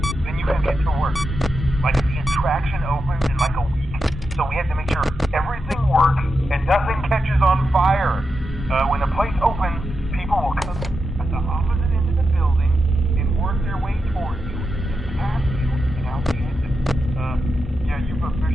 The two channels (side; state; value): both; normal; correlation 0.88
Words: then you can get to work. Like the attraction opens in like a week, so we have to make sure everything works and nothing catches on fire. When the place opens, people will come at the opposite end of the building and work their way towards you and past you and out the exit. Yeah, you've